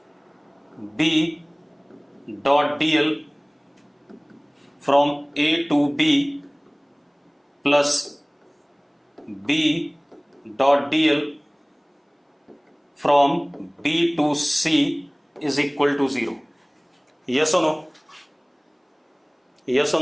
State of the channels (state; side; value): identical; both; correlation 1.00